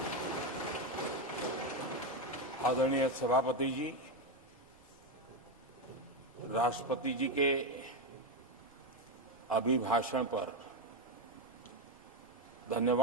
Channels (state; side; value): noise; right; rumble, 29 dB below the sound